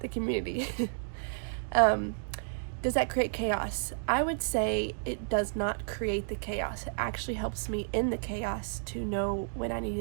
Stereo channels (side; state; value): left; silent; digital silence